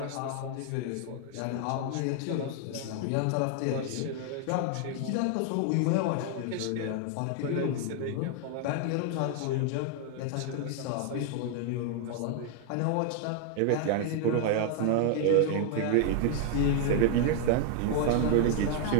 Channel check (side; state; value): both; different; correlation 0.00